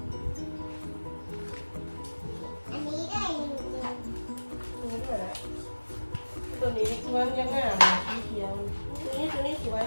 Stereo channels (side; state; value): both; inverted; correlation -1.00